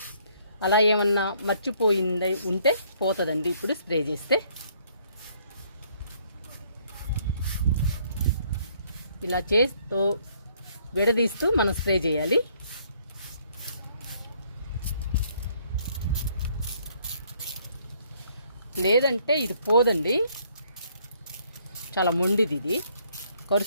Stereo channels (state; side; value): inverted; both; correlation -0.65